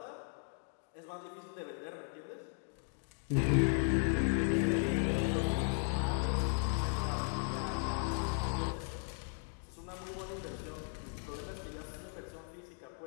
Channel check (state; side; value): silent; right; 53 dB below the other